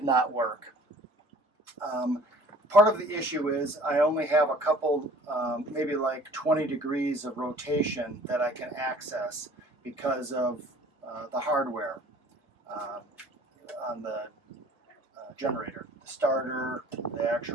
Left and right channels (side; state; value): both; normal; correlation 0.50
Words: not work. Part of the issue is I only have a couple, maybe like 20 degrees of rotation that I can access because of the hardware on the generator, the starter, the